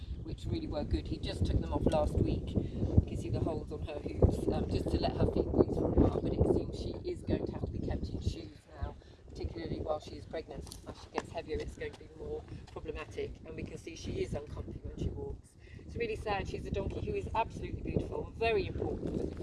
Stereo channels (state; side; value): identical; both; correlation 1.00